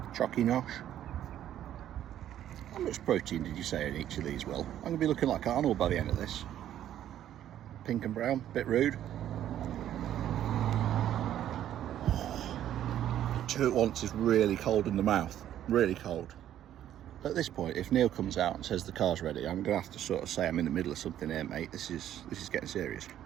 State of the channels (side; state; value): left; quieter; 11.4 dB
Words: Chocky nosh. How much protein did you say in each of these, Will? I'm going to be looking like Arnold by the end of this. Pink and brown, bit rude. Two at once is really cold in the mouth, really cold. At this point, if Neil comes out and says the car's ready, I'm going to have to sort of say I'm in the middle of something here, mate. This is getting serious.